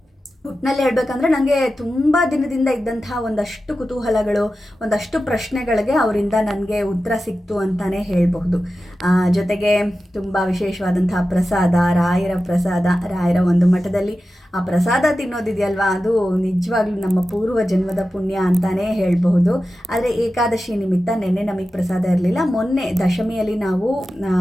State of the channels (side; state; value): both; normal; correlation 0.93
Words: ಒಟ್ಟಿನಲ್ಲಿ ಹೇಳ್ಬೇಕಂದ್ರೆ ನನಗೆ ತುಂಬ ದಿನದಿಂದ ಇದ್ದಂತಹ ಒಂದಷ್ಟು ಕುತೂಹಲಗಳು, ಒಂದಷ್ಟು ಪ್ರಶ್ನೆಗಳಿಗೆ ಅವರಿಂದ ನನಗೆ ಉತ್ತರ ಸಿಕ್ತು ಅಂತಲೇ ಹೇಳಬಹುದು. ಜೊತೆಗೆ ತುಂಬ ವಿಶೇಷವಾದಂತಹ ಪ್ರಸಾದ, ರಾಯರ ಪ್ರಸಾದ, ರಾಯರ ಒಂದು ಮಠದಲ್ಲಿ ಆ ಪ್ರಸಾದ ತಿನ್ನೋದಿದೆಯಲ್ವಾ, ಅದು ನಿಜವಾಗ್ಲೂ ನಮ್ಮ ಪೂರ್ವ ಜನ್ಮದ ಪುಣ್ಯ ಅಂತಲೇ ಹೇಳಬಹುದು. ಆದರೆ ಏಕಾದಶಿ ನಿಮಿತ್ತ ನಿನ್ನೆ ನಮಗೆ ಪ್ರಸಾದ ಇರಲಿಲ್ಲ. ಮೊನ್ನೆ ದಶಮಿಯಲ್ಲಿ ನಾವು